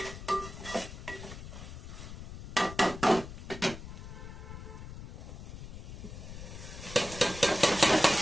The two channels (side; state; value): left; noise; rumble, 11 dB below the sound